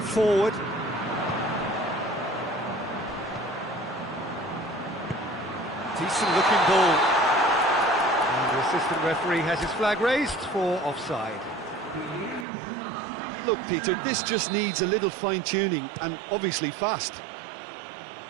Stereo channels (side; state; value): left; drops out; at 12.5 s